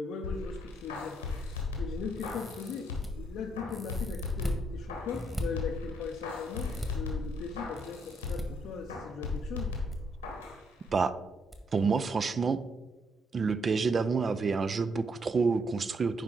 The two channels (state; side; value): normal; both; correlation 0.74